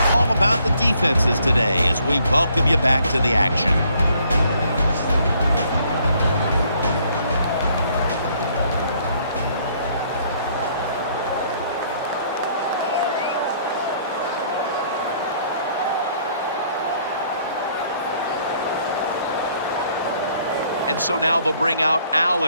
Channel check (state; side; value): inverted; both; correlation -0.64